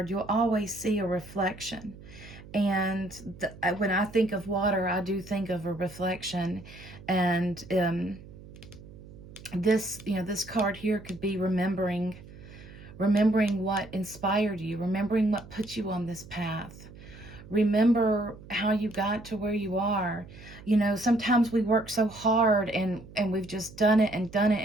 you'll always see a reflection. And when I think of water, I do think of a reflection. And this card here could be remembering what inspired you, remembering what put you on this path. Remember how you got to where you are. Sometimes we work so hard and we've just done it,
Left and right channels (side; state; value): right; noise; hum, 18 dB below the sound